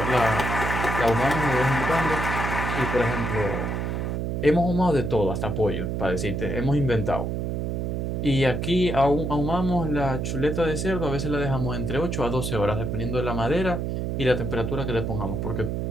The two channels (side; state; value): right; noise; hum, 1 dB below the sound